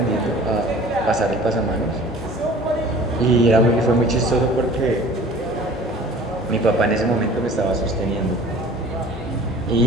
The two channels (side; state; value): both; normal; correlation 0.45